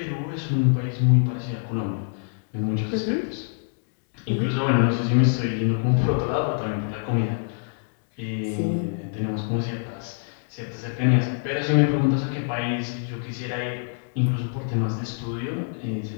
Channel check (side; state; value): right; silent; digital silence